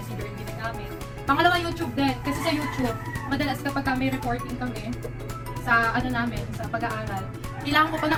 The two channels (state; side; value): identical; both; correlation 1.00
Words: yung ginagamit. Pangalawa, YouTube din. Kasi sa YouTube, madalas kapag may reporting kami, sa namin, sa pag-aaral, kailangan ko pa